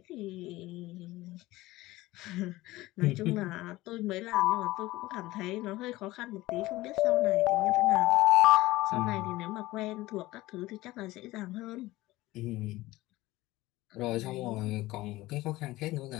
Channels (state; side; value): quieter; right; 18.2 dB